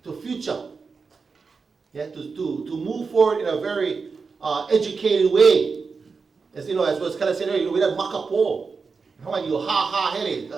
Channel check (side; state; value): left; quieter; 4.9 dB